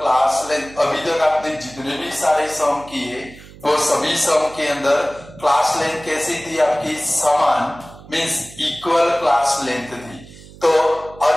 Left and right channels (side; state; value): right; noise; hum, 20 dB below the sound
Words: लेंथ। अभी तक आपने जितने भी सारे सम किए वो सभी सम के अंदर क्लास लेंथ कैसी थी आपकी, समान, मीन्स इक्वल क्लास लेंथ थी। तो